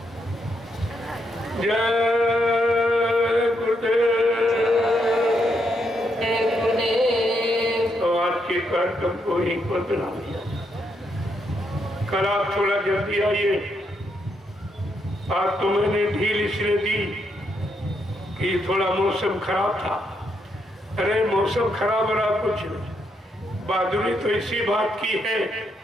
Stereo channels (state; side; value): normal; both; correlation 0.78